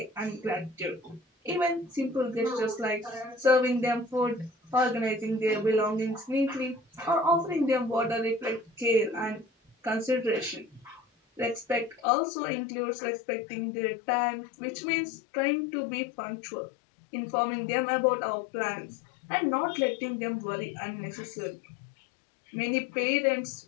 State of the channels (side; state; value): right; drops out; at 12.0 s